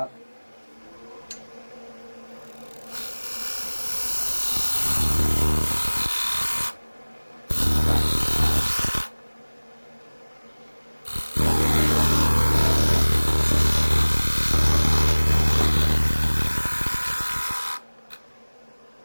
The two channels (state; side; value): inverted; both; correlation -1.00